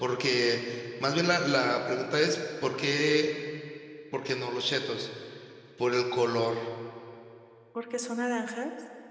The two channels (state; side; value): identical; both; correlation 1.00